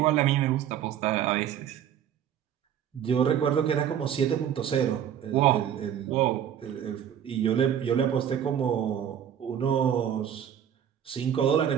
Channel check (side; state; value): left; quieter; 9.5 dB